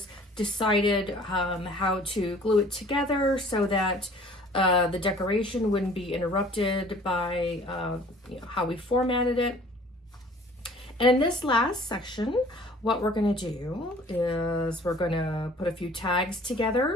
decided how to glue it together so that the decoration wouldn't be interrupted by how we formatted it. And in this last section, what we're going to do is we're going to put a few tags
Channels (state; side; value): normal; both; correlation 0.51